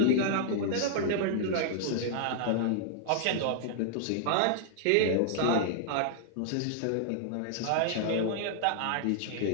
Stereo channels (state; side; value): different; both; correlation -0.01